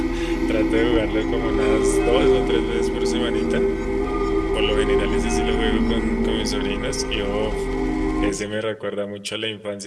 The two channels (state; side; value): identical; both; correlation 1.00